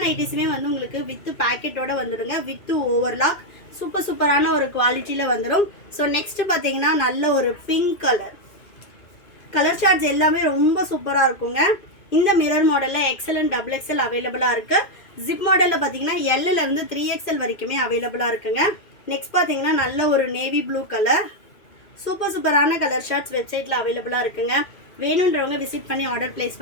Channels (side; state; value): right; late; 2.5 ms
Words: நைட்டிஸுமே வந்து உங்களுக்கு வித் பேக்கெட்டோட வந்துடுங்க, வித் ஓவர்லாக். சூப்பரான ஒரு குவாலிட்டியில் வந்துடும். ஸோ நெக்ஸ்ட் பார்த்தீங்கன்னா நல்ல ஒரு பிங்க் கலர் சார்ட்ஸ் எல்லாமே ரொம்ப சூப்பராக இருக்குங்க. இந்த மிரர் மாடலில் எக்ஸல் அண்ட் டபுள் எக்ஸல் அவைலபிளாக இருக்குது. ஜிப் மாடலில் பார்த்தீங்கன்னா எல்லிருந்து 3XL வரைக்குமே அவைலபிளாக இருக்குங்க. நெக்ஸ்ட் பார்த்தீங்கன்னா நல்ல ஒரு நேவி ப்ளூ கலர், சூப்பரான கலர் ஷார்ட்ஸ் வெப்சைட்டில் அவைலபிளாக இருக்குங்க. வேணுன்றவங்க விசிட் பண்ணி ஆர்டர் பிளேஸ்